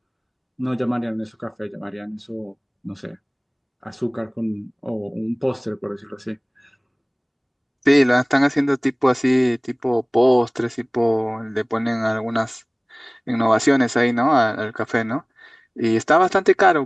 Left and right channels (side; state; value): both; identical; correlation 1.00